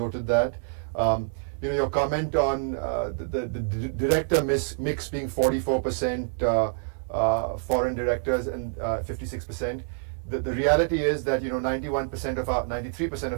that. Your comment on the director mix being 44% foreign directors and 56%. The reality is that 93%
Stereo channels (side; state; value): left; silent; 60 dB below the other